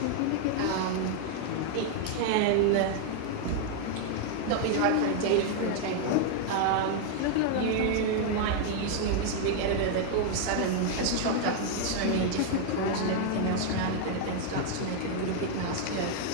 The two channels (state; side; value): different; both; correlation 0.00